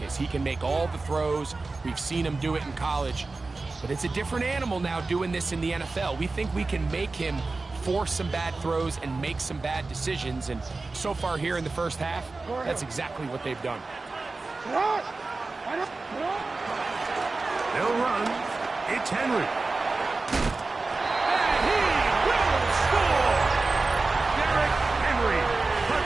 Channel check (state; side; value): quieter; left; 3.6 dB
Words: is. He can make all the throws. We've seen him do it in college. But it's a different animal now doing this in the NFL. We think we can make him force some bad throws and make some bad decisions. And so far here in the first half, that's exactly what they've done. They'll run. It's Henry. And he will score! Derrick Henry.